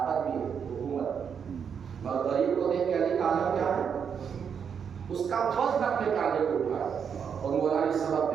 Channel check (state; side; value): quieter; left; 7.2 dB